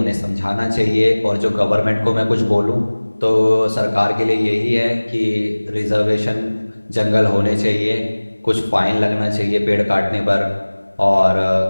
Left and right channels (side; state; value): both; inverted; correlation -1.00